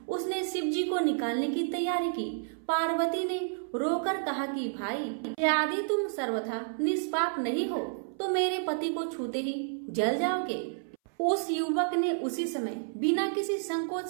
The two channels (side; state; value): left; silent; 58 dB below the other